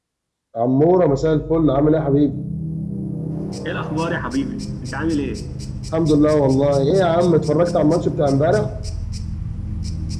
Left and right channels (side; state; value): both; identical; correlation 1.00